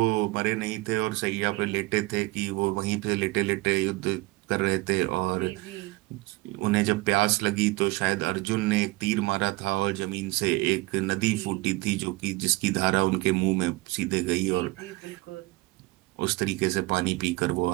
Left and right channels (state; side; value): quieter; left; 21.5 dB